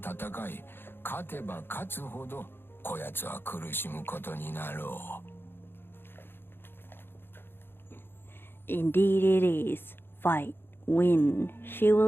い、勝てば勝つほどこやつは苦しむことになろう。Indeed it is. Fight. Win. She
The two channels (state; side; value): late; right; 0.10 ms